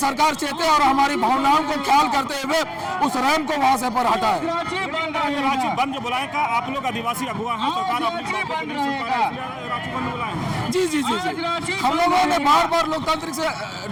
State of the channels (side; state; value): both; identical; correlation 1.00